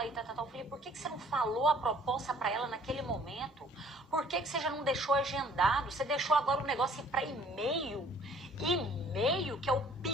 e tal. Eu falei, por que você não falou a proposta para ela naquele momento? Por que você já não deixou agendado? Você deixou agora o negócio ir para e-mail? E-mail, que é o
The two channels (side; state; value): both; normal; correlation 0.57